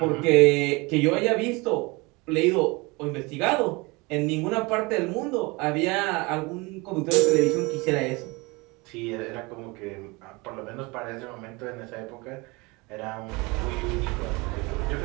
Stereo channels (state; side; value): quieter; left; 25.5 dB